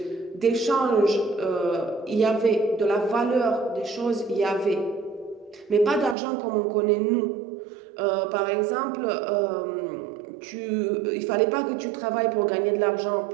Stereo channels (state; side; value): drops out; left; at 6.2 s